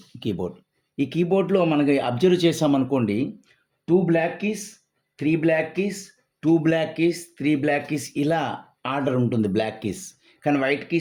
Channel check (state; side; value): identical; both; correlation 1.00